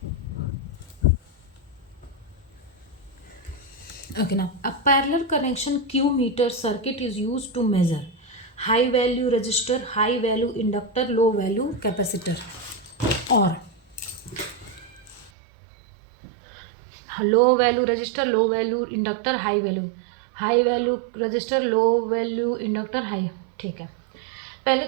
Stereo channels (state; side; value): drops out; left; at 15.3 s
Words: Okay, now a parallel connection Q meter circuit is used to measure high value resistor, high value inductor, low value capacitor, or low value resistor, low value inductor, high value resistor, low value inductor, high। ठीक है, पहले